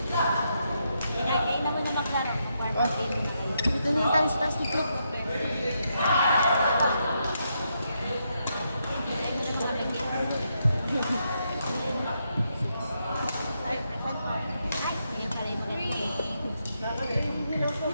lang kayo naman na maklaro dito na yung tayo sa taas dito.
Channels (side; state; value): both; inverted; correlation -0.81